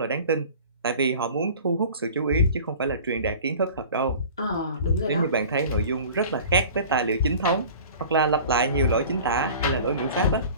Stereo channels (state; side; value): inverted; both; correlation -0.42